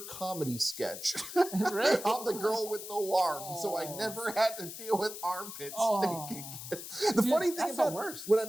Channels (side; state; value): left; noise; hiss, 10 dB below the sound